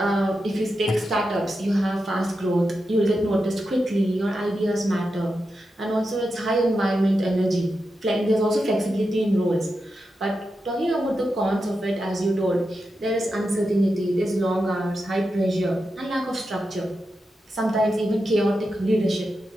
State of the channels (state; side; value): normal; both; correlation 0.88